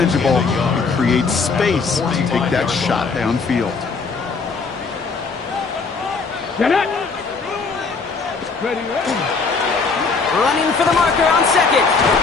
and creates space to take that shot downfield. Get it. Ready. Running for the marker on second.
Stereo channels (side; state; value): right; quieter; 4.6 dB